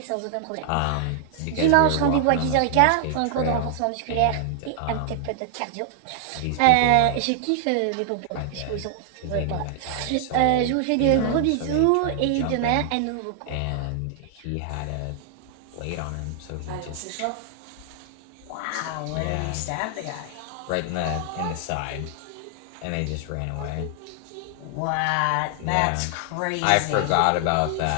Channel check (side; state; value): both; different; correlation 0.00